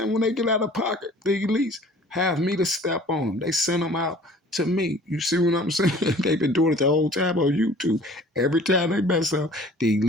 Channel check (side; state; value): both; normal; correlation 0.49